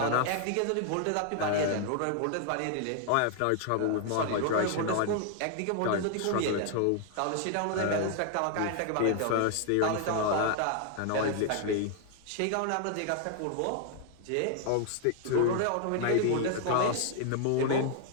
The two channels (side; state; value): both; different; correlation 0.00